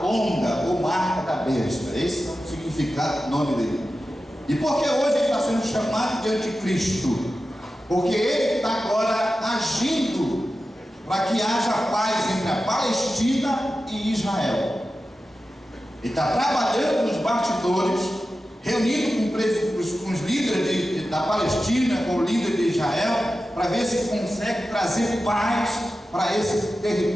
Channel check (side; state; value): both; normal; correlation 0.93